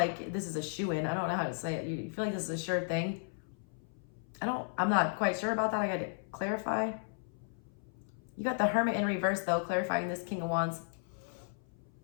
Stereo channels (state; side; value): silent; right; 55 dB below the other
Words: this is a shoo-in. I don't know how to say it. You feel like this is a sure thing. I'm not quite sure about that. I got to clarify. You got the Hermit in reverse though, clarifying this King of Wands.